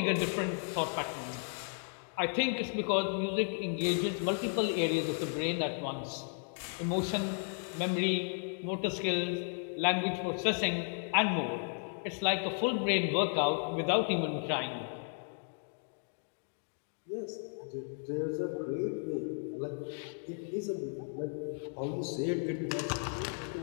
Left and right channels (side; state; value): right; silent; 55 dB below the other